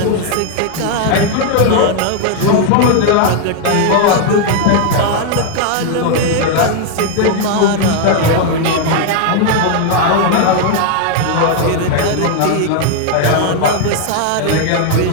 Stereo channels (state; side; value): different; both; correlation 0.00